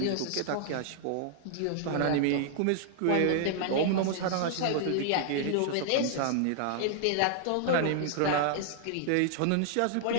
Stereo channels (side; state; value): both; different; correlation -0.01